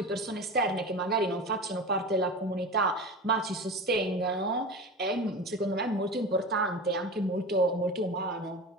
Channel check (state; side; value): normal; both; correlation 0.30